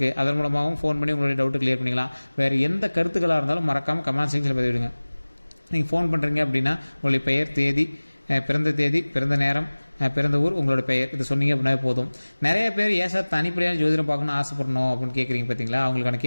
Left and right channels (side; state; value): both; inverted; correlation -1.00